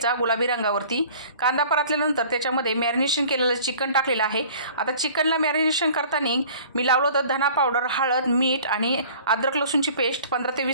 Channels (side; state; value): both; inverted; correlation -0.48